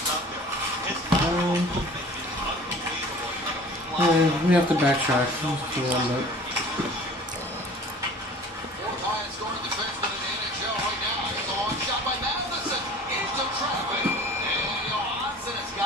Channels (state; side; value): normal; both; correlation 0.45